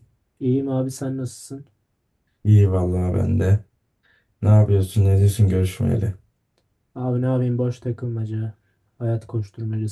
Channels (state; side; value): identical; both; correlation 1.00